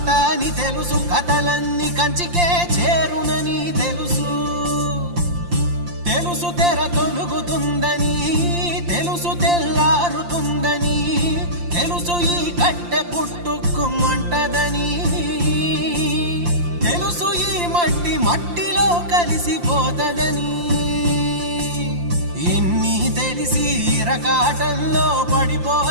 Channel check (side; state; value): left; late; 5.7 ms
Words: అని తెలుసు, కథలన్నీ కంచికే చేరునని తెలుసు. తెలుసు తెర తొలుగుతుందని, తెలుసు తెల్లారుతుందని, తెలుసు ఈ కట్టె పుట్టుకుమంటదని, తెలుసు ఈ మట్టి మట్టిలో కలిసిపోతదని. ఇన్ని తెలిసి ఇరకాటంలో